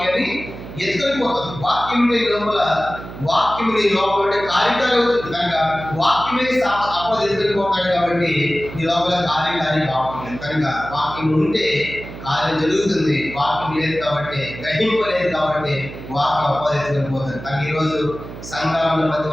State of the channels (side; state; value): right; noise; hum, 12 dB below the sound